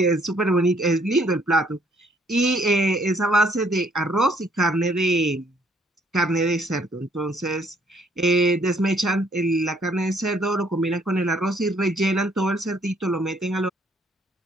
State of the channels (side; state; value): both; normal; correlation 0.65